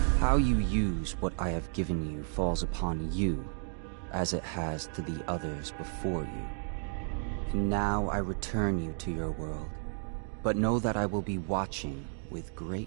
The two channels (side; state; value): left; silent; 56 dB below the other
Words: How you use what I have given you falls upon you, as it has to the others before you. And now I return you to your world, but know that I will be watching with great